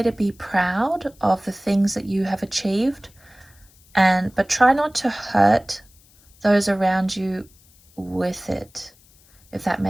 to be proud of the things that you have achieved, but try not to hurt those around you with it, if that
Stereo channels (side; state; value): left; noise; hiss, 29 dB below the sound